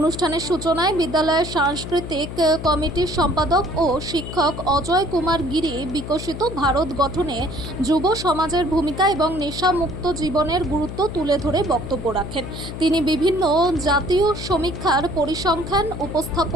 সূচনায় বিদ্যালয়ের সাংস্কৃতিক কমিটির সম্পাদক ও শিক্ষক অজয় কুমার গিরি বিকশিত ভারত গঠনে যুব সমাজের ভূমিকা এবং নেশামুক্ত জীবনের গুরুত্ব তুলে ধরে বক্তব্য রাখেন। তিনি বিভিন্ন জাতীয় সমীক্ষার পরিসংখ্যান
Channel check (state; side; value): noise; left; hum, 9 dB below the sound